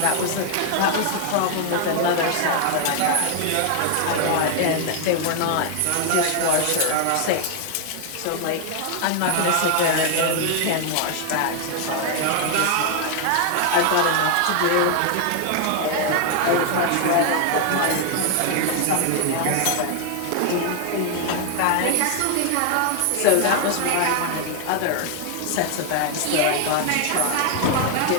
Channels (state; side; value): different; both; correlation 0.00